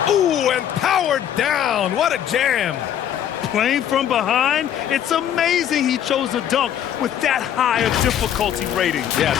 Ooh, and powered down. What a jam. Playing from behind, it's amazing he chose a dunk with that high a difficulty rating. Yeah,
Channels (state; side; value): quieter; right; 10.0 dB